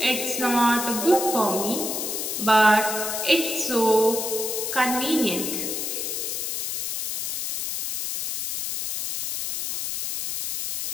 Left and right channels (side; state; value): left; noise; hiss, 3 dB below the sound